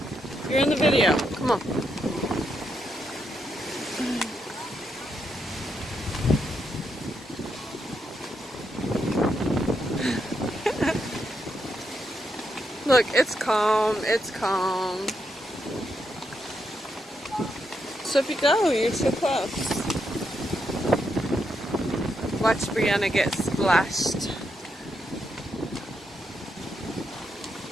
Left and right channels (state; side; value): normal; both; correlation 0.81